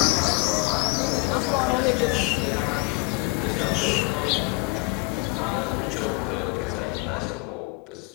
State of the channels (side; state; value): right; quieter; 26.9 dB